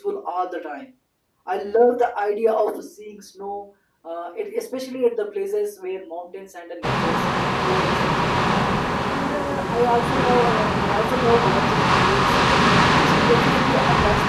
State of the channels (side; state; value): both; identical; correlation 1.00